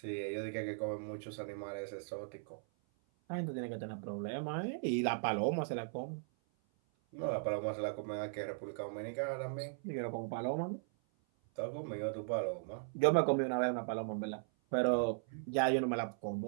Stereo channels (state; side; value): silent; left; 52 dB below the other